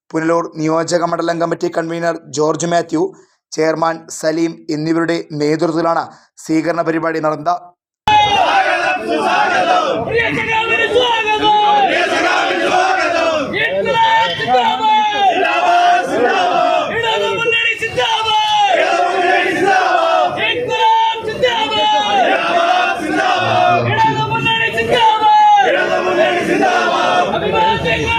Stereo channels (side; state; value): both; identical; correlation 1.00